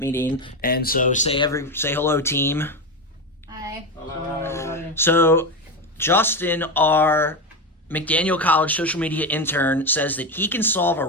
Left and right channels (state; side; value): normal; both; correlation 0.15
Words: And so say hello, team. Hi. Hello. So Justin, our McDaniel College social media intern, says that he can solve a